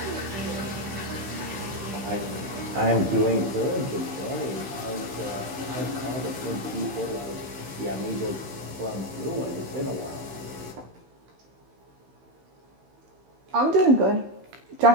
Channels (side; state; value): left; late; 15 ms